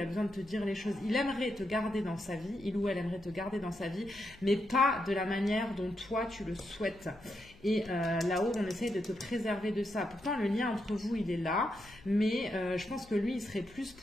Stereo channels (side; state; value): left; noise; hum, 24 dB below the sound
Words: a besoin de te dire les choses. Il aimerait te garder dans sa vie. Il ou elle aimerait te garder dans sa vie, mais pas de la manière dont toi tu le souhaites. Et là-haut, on essaye de te préserver de ça. Pourtant, le lien entre vous, il est là, mais je pense que lui, il serait plus